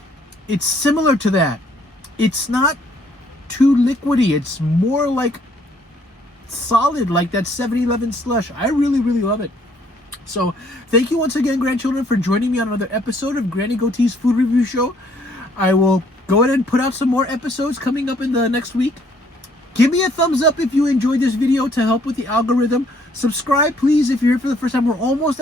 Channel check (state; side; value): normal; both; correlation 0.64